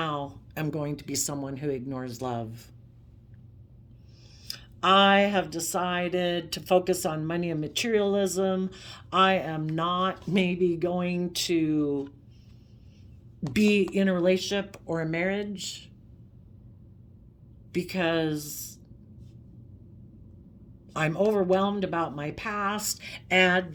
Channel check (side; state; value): both; identical; correlation 1.00